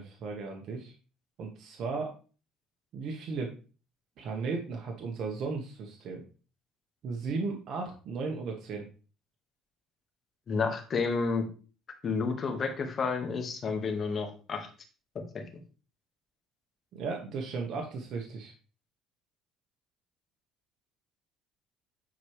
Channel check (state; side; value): normal; both; correlation 0.66